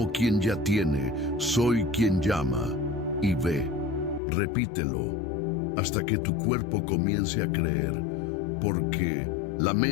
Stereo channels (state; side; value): drops out; right; at 4.2 s